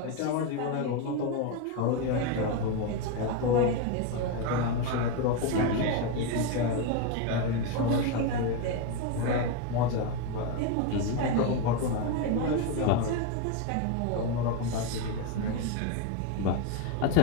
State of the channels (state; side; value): different; both; correlation 0.03